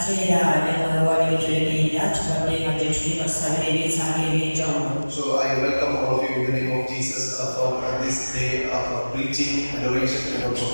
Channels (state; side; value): inverted; both; correlation -1.00